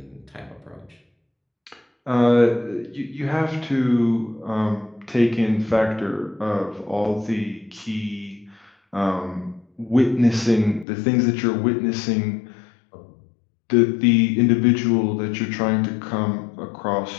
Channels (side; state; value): right; drops out; at 10.9 s